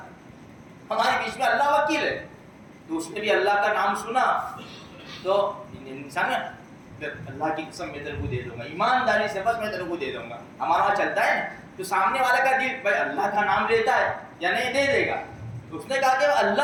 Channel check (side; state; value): both; identical; correlation 1.00